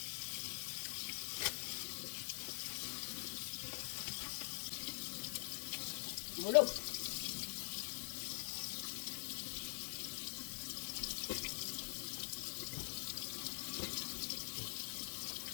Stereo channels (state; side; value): silent; right; digital silence